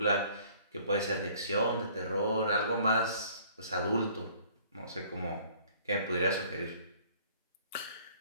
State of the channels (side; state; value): both; inverted; correlation -0.56